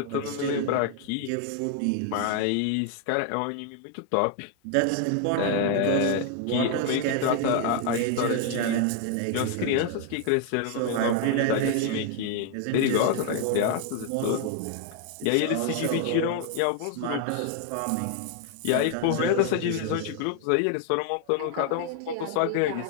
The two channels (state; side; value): different; both; correlation 0.00